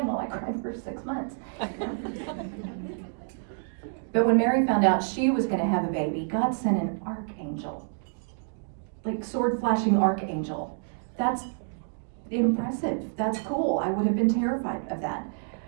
while I cried for 6 months. But when Mary found out she was going to have a baby, God sent an archangel, like sword-flashing archangel. That's impressive. That's cool. I would have been terrified of that.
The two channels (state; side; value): silent; left; digital silence